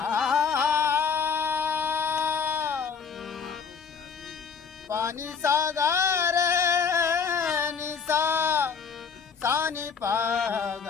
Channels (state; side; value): quieter; right; 6.1 dB